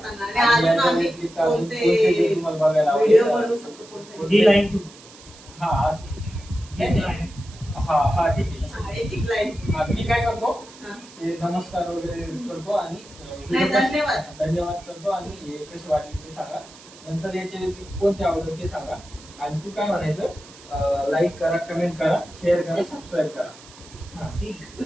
सांगा. आणि अजून आम्ही कोणते तुम्हाला बघायला व्हिडिओ आवडेल. बनवू शकतो कोणते. ही लाईन तू हा हा हा ठीक आहे. एक लाईन. मी काय करतो हा. ते नमस्कार वगैरे करतो आणि नाही, धन्यवाद करतो आणि हे कसे वाटले ते सांगा. नंतर याचे व्यतिरिक्त कोणते आवडत ते सांगा. आणि तू काय म्हणायचं, लाईक करा, कमेंट करा, शेअर करा, सबस्क्राईब करा. हा ठीक.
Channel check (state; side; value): noise; right; hiss, 21 dB below the sound